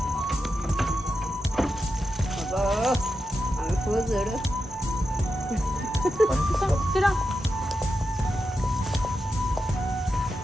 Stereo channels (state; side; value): normal; both; correlation 0.89